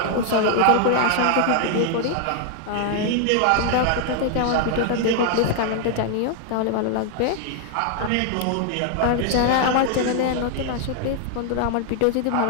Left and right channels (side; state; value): both; different; correlation 0.00